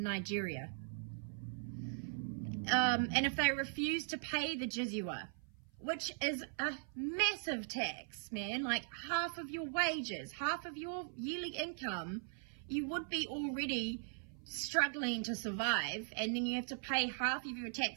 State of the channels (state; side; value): silent; left; 51 dB below the other